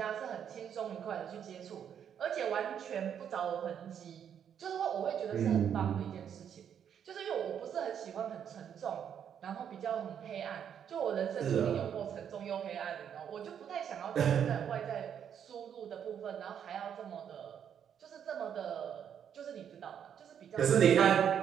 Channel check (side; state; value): left; quieter; 8.6 dB